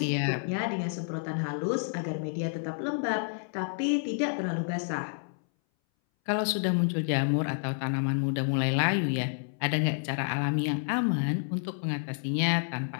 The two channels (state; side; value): silent; right; 58 dB below the other